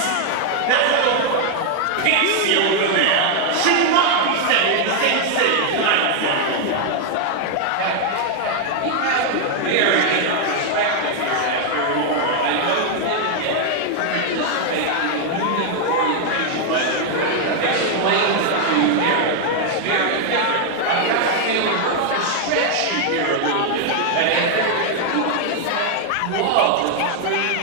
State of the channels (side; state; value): both; different; correlation 0.00